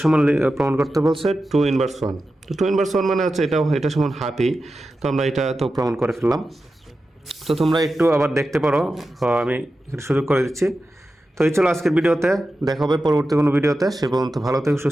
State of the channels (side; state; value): both; normal; correlation 0.92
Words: সমান প্রমাণ করতে বলছে 2 ইনভার্স 1। তো 2 ইনভার্স 1 মানে হচ্ছে এটা সমান হাফই। তো আমরা এটা তো প্রমাণ করে ফেললাম। তো তোমরা একটু আবার দেখতে পারো, আমি একটু সুযোগ করে দিচ্ছি। তো এই ছিল আজকের ভিডিওতে, দেখা হবে পরবর্তী কোনো ভিডিওতে। সে পর্যন্ত ভালো থেকো,